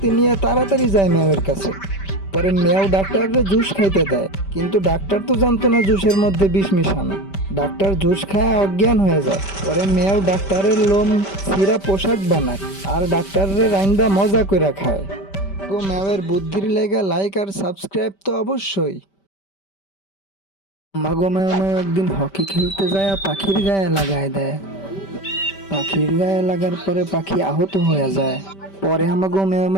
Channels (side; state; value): right; late; 5.1 ms